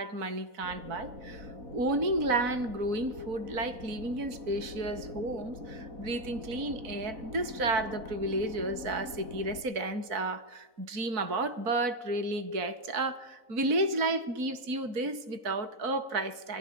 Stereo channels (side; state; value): left; late; 4.0 ms